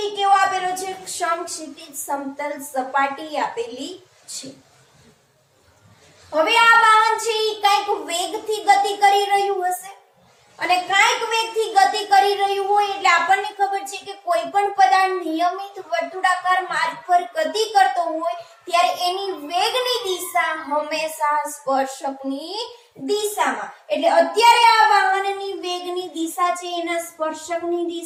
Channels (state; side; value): identical; both; correlation 1.00